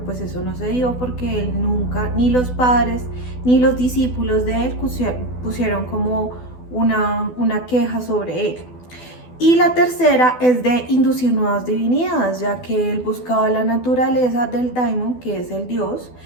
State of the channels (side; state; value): right; late; 12 ms